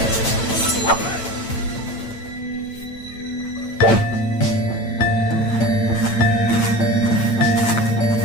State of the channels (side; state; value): right; late; 8.9 ms